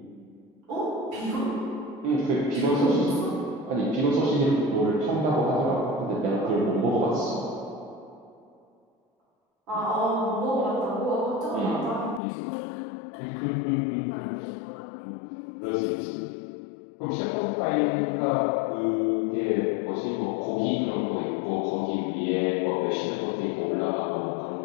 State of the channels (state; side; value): drops out; right; at 12.2 s